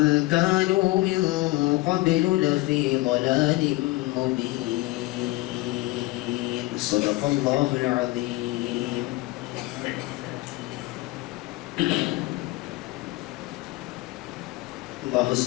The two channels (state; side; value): quieter; right; 20.1 dB